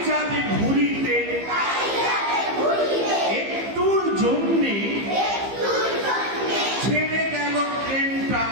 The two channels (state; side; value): late; left; 15 ms